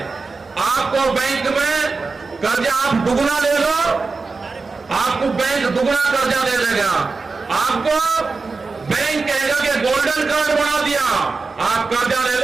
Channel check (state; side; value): quieter; left; 4.2 dB